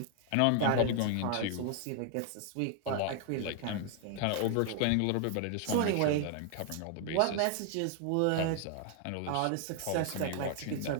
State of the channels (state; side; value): different; both; correlation 0.00